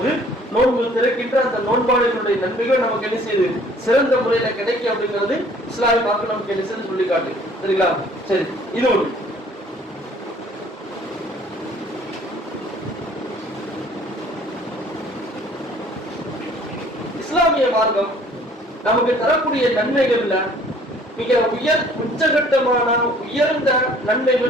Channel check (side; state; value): both; normal; correlation 0.55